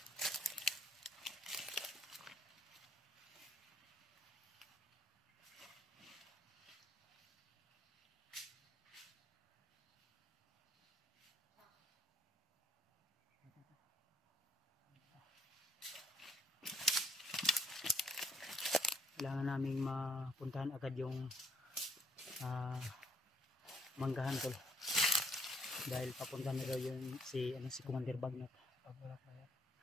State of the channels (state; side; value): normal; both; correlation 0.67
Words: kailangan naming mapuntahan agad yung manggahan tol. Dahil papunta na daw yun si Commander Bagnot. Pag wala pa yan.